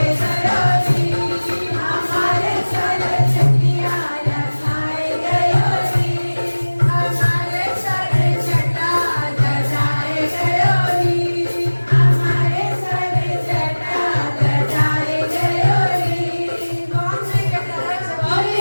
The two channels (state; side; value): inverted; both; correlation -1.00